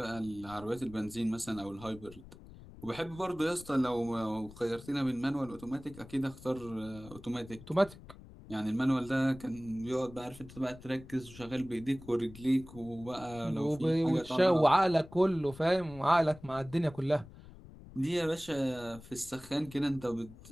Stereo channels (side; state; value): left; noise; rumble, 18 dB below the sound